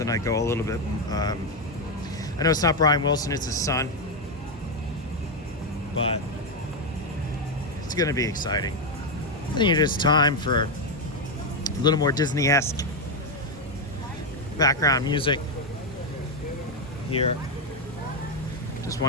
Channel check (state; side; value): normal; both; correlation 0.05